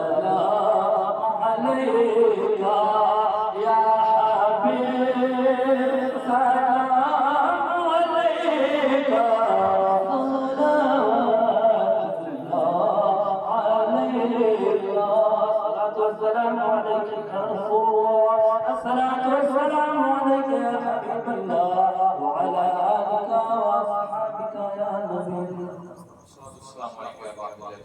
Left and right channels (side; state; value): both; identical; correlation 1.00